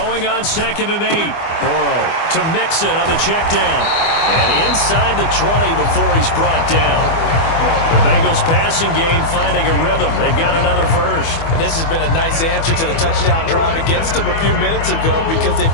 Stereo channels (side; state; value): right; late; 24 ms